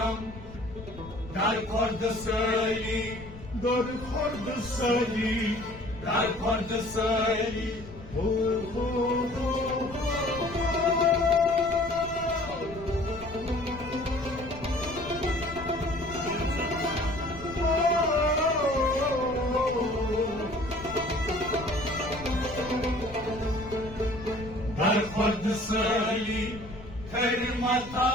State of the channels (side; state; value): left; noise; rumble, 15 dB below the sound